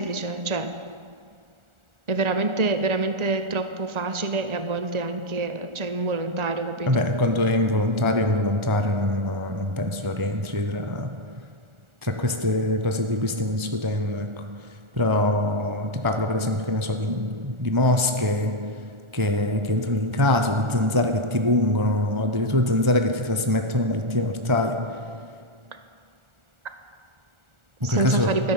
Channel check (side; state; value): left; late; 1.4 ms